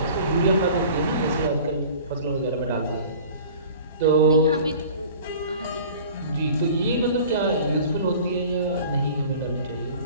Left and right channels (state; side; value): inverted; both; correlation -0.44